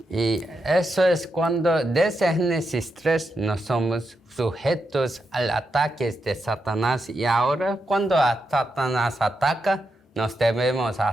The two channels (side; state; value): both; normal; correlation 0.85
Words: Y eso es cuando desde Génesis 3 no somos sujetos al ataque de Satanás y ahora cuando Satanás ataca nos debemos